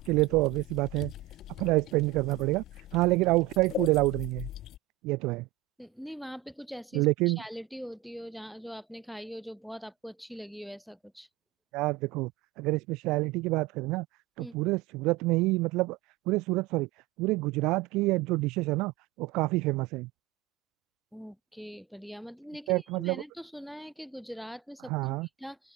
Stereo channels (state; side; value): quieter; left; 15.2 dB